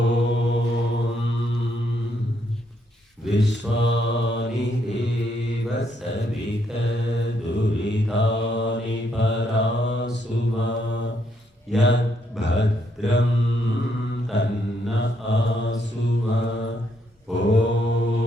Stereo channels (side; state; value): both; normal; correlation 0.74